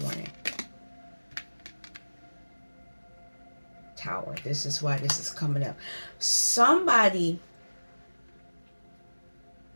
Tower. This is why this is coming up. Somebody,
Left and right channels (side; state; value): both; inverted; correlation -1.00